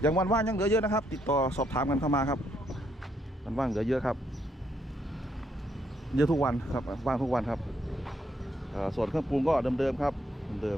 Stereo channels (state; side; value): normal; both; correlation 0.74